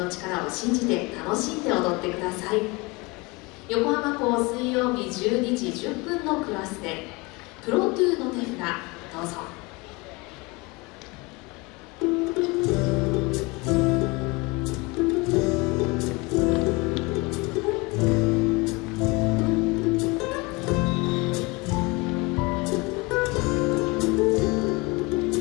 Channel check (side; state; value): right; quieter; 25.2 dB